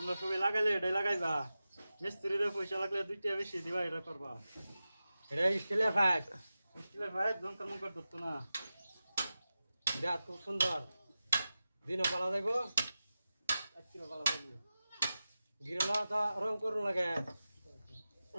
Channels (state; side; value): inverted; both; correlation -0.94